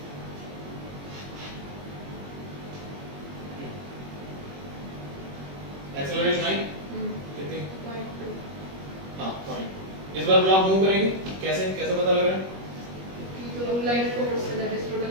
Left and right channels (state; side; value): late; left; 21 ms